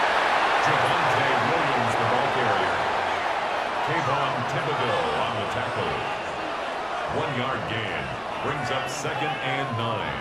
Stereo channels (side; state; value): both; identical; correlation 1.00